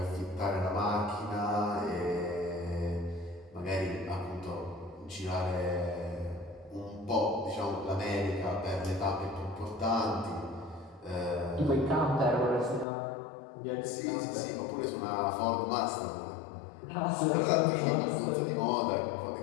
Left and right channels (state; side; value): drops out; right; at 12.9 s